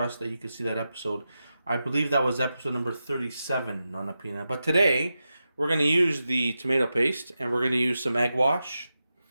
that you can see that episode. I believe that was episode number 37, Nonna Pina. But today we're going to use the tomato paste and we're going to use some egg wash.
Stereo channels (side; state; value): both; inverted; correlation -0.90